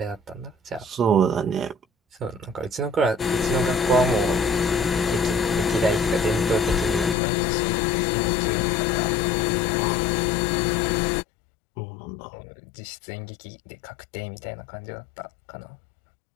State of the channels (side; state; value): right; drops out; at 7.2 s